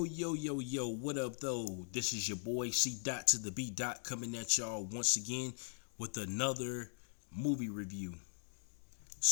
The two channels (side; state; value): right; silent; digital silence